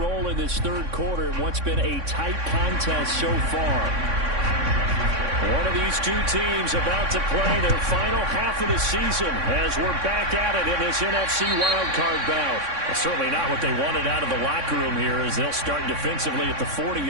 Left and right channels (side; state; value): left; late; 3.6 ms